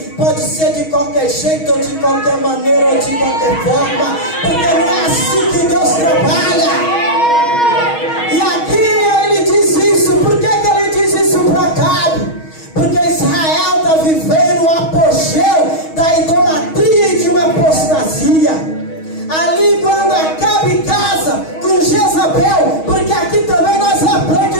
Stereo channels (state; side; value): late; right; 6.3 ms